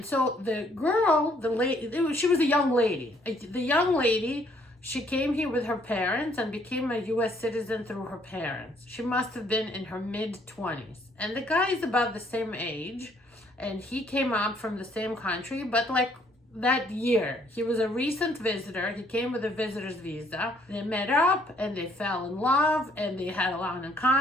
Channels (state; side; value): normal; both; correlation 0.65